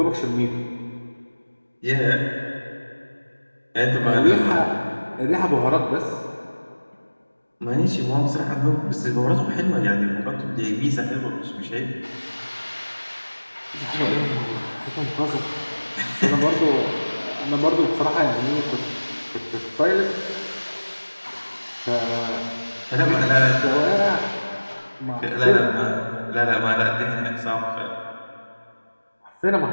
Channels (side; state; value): both; inverted; correlation -1.00